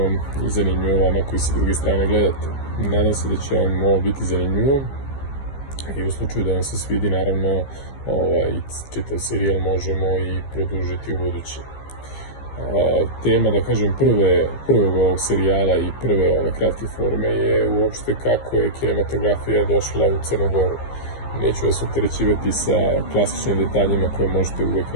i zanimljivo vama koji sa druge strane gledate. Nadam se da će vam ovo biti zanimljivo i u slučaju da vam se svidi, naravno, čitav serijal možemo i produžiti u budući. Tema, da kažem, prvog ovog serijala i prve ove kratke forme je uopšte kako je kinematografija došla u Crnu Goru. Neću vas opterećivati sa klasičnim detaljima koje možete uvek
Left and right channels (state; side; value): late; right; 15 ms